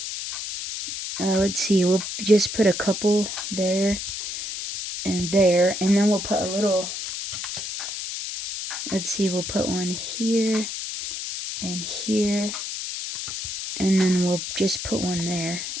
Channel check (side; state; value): left; noise; hiss, 6 dB below the sound